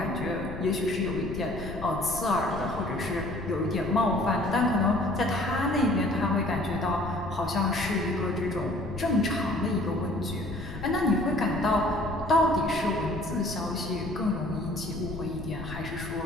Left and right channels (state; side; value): noise; left; rumble, 10 dB below the sound